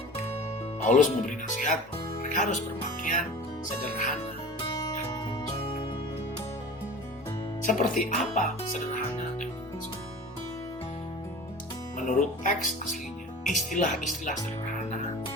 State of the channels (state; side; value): normal; both; correlation 0.38